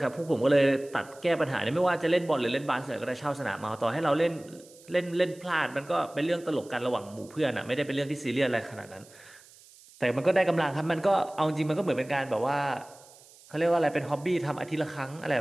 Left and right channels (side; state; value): right; noise; hiss, 24 dB below the sound